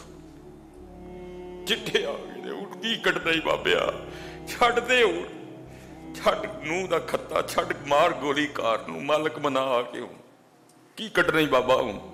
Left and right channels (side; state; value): both; identical; correlation 1.00